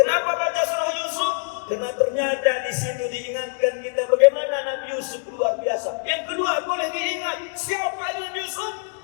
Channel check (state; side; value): silent; right; 63 dB below the other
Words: baca surah Yusuf? Karena ternyata di situ diingatkan kita bagaimana Nabi Yusuf luar biasa. Yang kedua boleh diingat siapa Nabi Yusuf?